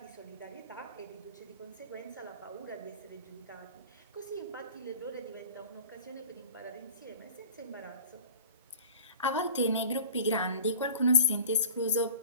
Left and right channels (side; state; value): both; inverted; correlation -0.42